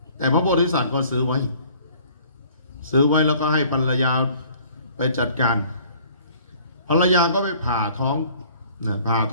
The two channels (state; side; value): inverted; both; correlation -0.54